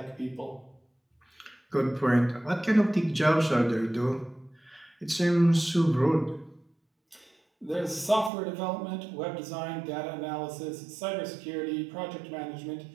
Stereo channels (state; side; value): drops out; left; at 8.3 s